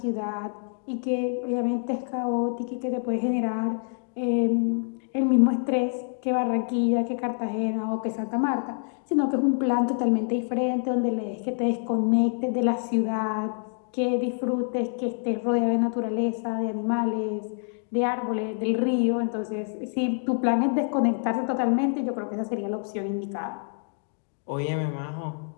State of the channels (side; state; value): right; silent; 57 dB below the other